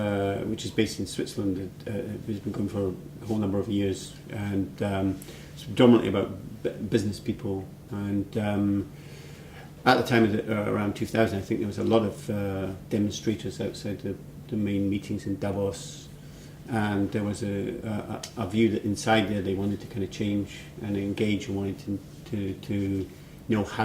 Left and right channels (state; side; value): identical; both; correlation 1.00